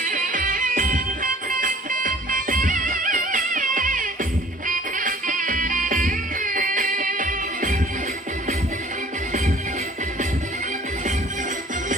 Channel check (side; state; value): both; normal; correlation 0.51